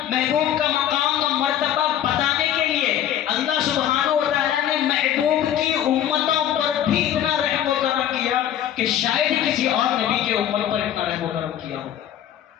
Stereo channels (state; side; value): quieter; right; 10.7 dB